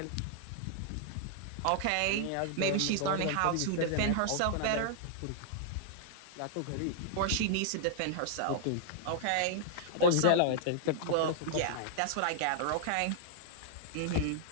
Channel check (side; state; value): both; different; correlation -0.01